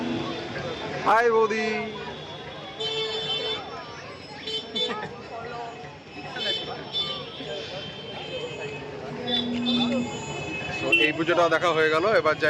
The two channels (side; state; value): both; identical; correlation 1.00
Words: হাই বৌদি। তো এই পুজোটাও দেখা হয়ে গেল, এবার